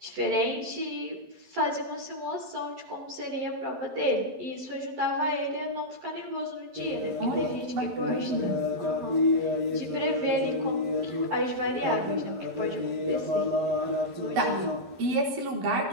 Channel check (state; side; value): late; left; 11 ms